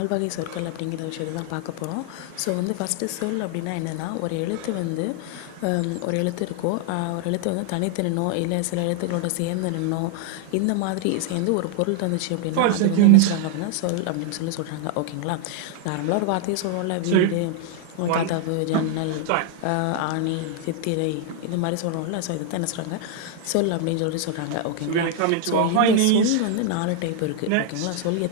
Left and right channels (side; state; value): both; different; correlation 0.00